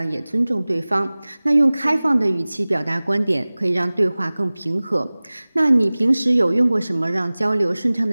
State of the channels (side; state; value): both; inverted; correlation -0.99